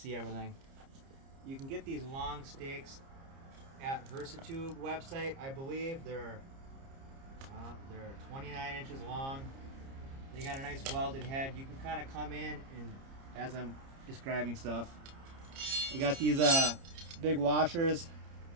everything? You can get these long stakes at Versatube website. I believe they're 29 inches long. They got a nice welded head. You can kind of come in and, as I'm describing stuff, they got these big washers.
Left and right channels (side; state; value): left; late; 30 ms